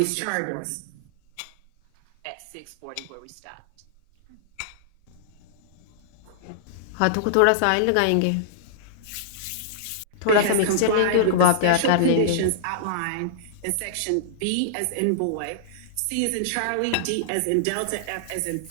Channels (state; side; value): different; both; correlation -0.02